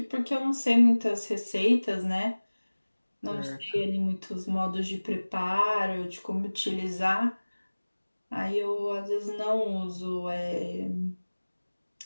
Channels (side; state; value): both; inverted; correlation -1.00